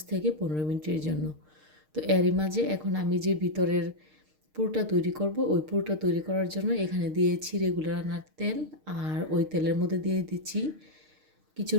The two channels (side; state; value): left; late; 6.5 ms